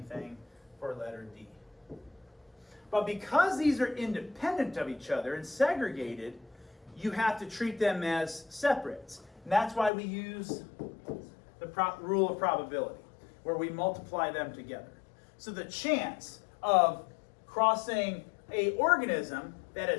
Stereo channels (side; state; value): right; drops out; at 9.9 s